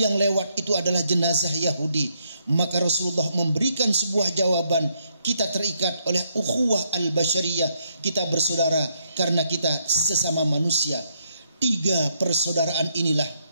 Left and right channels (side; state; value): both; inverted; correlation -0.75